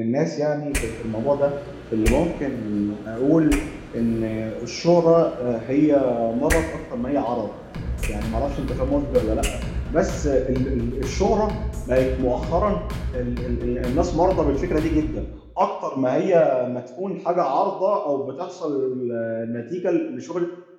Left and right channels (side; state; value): both; identical; correlation 1.00